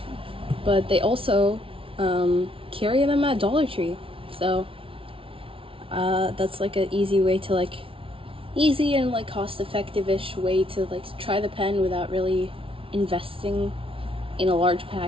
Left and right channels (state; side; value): late; left; 0.26 ms